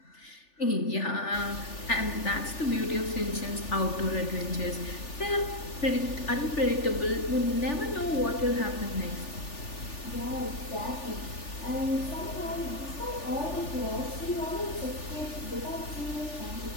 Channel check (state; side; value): late; right; 3.4 ms